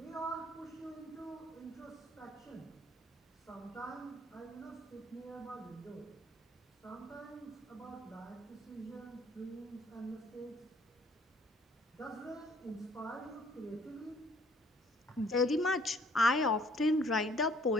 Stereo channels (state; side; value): normal; both; correlation 0.59